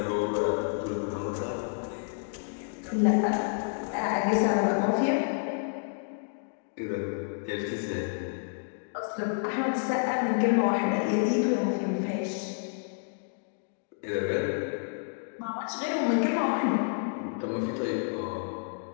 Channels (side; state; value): right; silent; digital silence